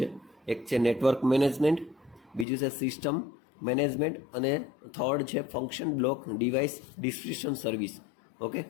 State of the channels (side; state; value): right; drops out; at 2.5 s